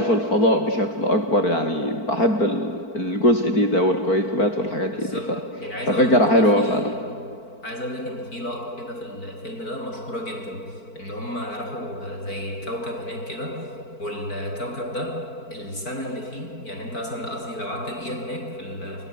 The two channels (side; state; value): right; late; 4.5 ms